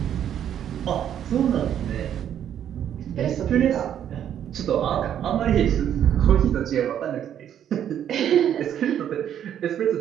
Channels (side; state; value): left; quieter; 9.9 dB